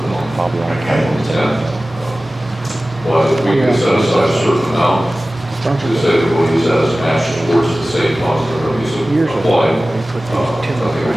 the 10th. But if we can set aside a certain amount to say that we'll use that as a match towards the same funds that are going to be applied, I think it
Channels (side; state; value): both; normal; correlation 0.96